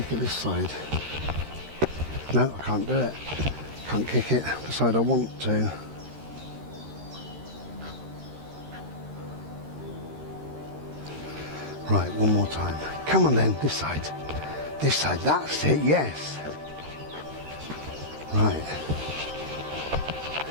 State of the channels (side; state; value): left; late; 13 ms